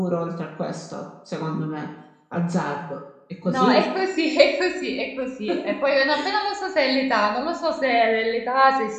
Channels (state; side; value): identical; both; correlation 1.00